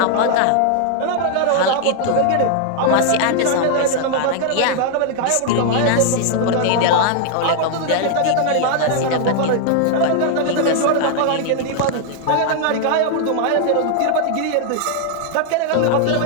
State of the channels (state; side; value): different; both; correlation -0.01